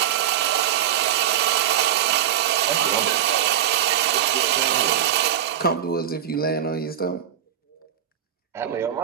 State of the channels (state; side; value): quieter; left; 10.4 dB